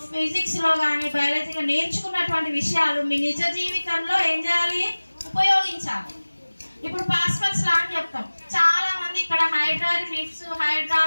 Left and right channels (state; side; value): inverted; both; correlation -1.00